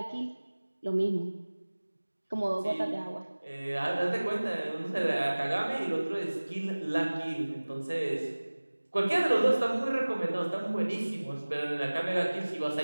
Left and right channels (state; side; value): inverted; both; correlation -1.00